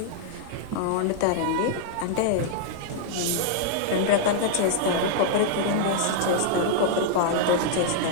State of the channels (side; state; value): both; different; correlation -0.01